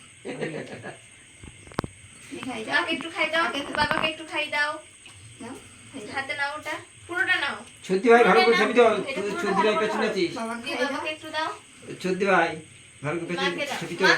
খাই দাও একটু খাই দাও বাবাকে একটু খাই দাও নাও হাতে নাও ওটা পুরোটা নাও ছদ্দি ভাই ভালো করে ছবি দাও তুই ছদ্দি ভাই পেছনে আছিস বাবাকে একটু দাও ছদ্দি ভাই ভালো করে পেছনে ছবি দাও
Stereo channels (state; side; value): identical; both; correlation 1.00